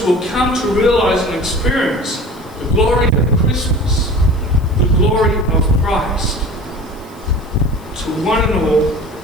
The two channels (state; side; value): noise; left; hiss, 28 dB below the sound